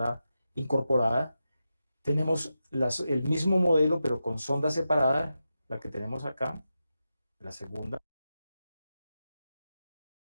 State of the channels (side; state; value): both; inverted; correlation -0.90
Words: incorporada. Tenemos el mismo modelo, pero con sonda separada, la que tenemos acá, la segunda.